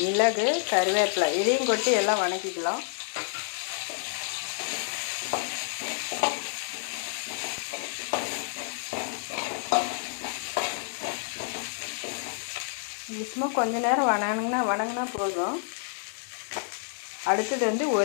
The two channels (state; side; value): silent; right; digital silence